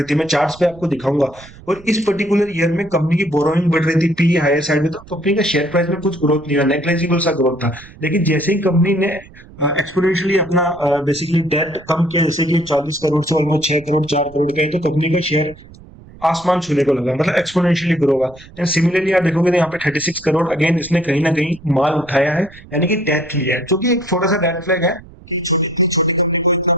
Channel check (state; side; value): noise; right; rumble, 21 dB below the sound